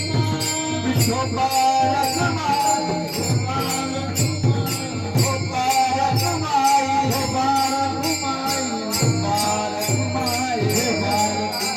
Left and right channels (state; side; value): identical; both; correlation 1.00